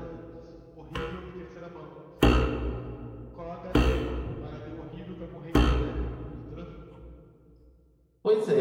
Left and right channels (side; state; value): both; identical; correlation 1.00